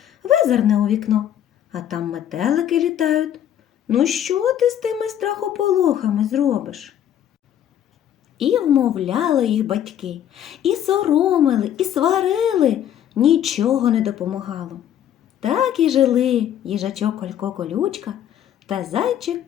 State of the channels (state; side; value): quieter; right; 10.4 dB